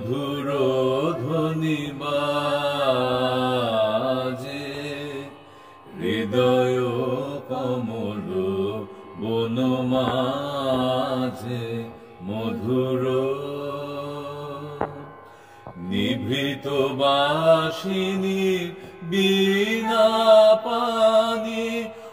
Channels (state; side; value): identical; both; correlation 1.00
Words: ধ্বনি বাজে হৃদয় কমল বন মাঝে মধুর নিভৃত বাসিনী বীণা পানি